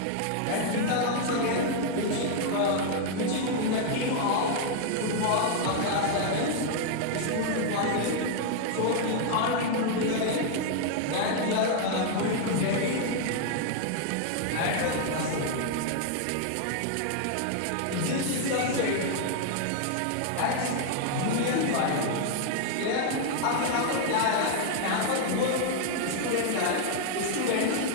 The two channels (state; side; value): different; both; correlation 0.00